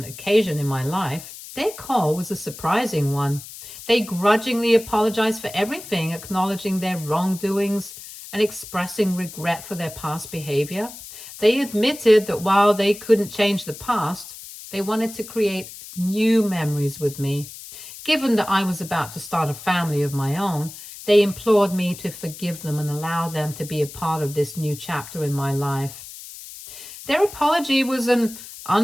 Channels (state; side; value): noise; left; hiss, 14 dB below the sound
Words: occasion in my life. Their call was a surprising one. They grudgingly apologized for everything, acknowledging their wrongdoings and expressing regret for their past behavior. They admitted that while they couldn't change the past, they wanted to create new memories with me. Given that I was about to start a family of my own, they implored me to forgive them and allow them to be a part of this new chapter in my life. Their apology was an